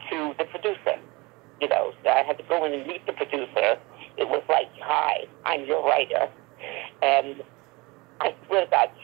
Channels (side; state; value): left; quieter; 24.6 dB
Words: to the producer, so I had to go in and meet the producer. It was like, hi, I'm your writer. And I swear to God,